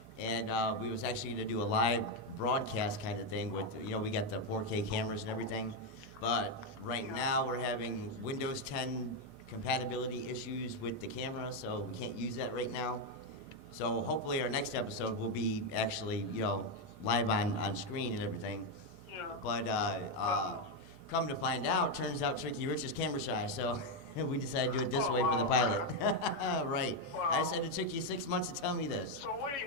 And we was actually going to do a live broadcast kind of thing with, we got the 4K cameras and everything. But right now we're having Windows 10 compatibility issues with the camera, so we can't use that right now. So hopefully our next episode will be actually, live on screen and everything. Yeah. But come to find out, turns out Trickyrich is camera shy, so we decided to do it this Oh, way for the wow. pilot. Right. I Wow. said it took you 6 months to tell me this. So what are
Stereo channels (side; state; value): right; late; 7.2 ms